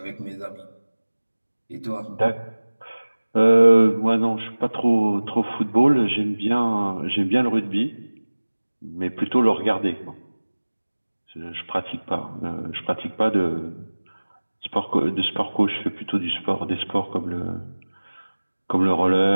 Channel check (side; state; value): both; inverted; correlation -1.00